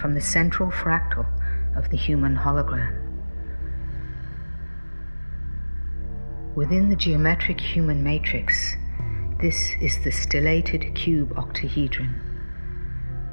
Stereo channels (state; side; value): inverted; both; correlation -1.00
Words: the central fractal of the human hologram. Within the geometric human matrix, this is the stellated cube octahedron,